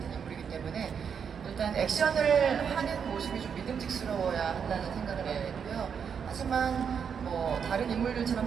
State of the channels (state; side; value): quieter; left; 7.0 dB